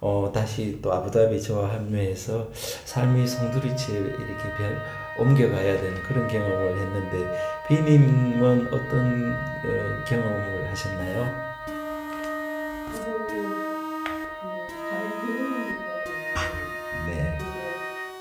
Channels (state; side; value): identical; both; correlation 1.00